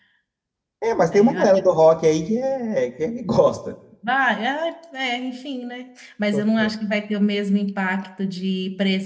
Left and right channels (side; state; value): both; identical; correlation 1.00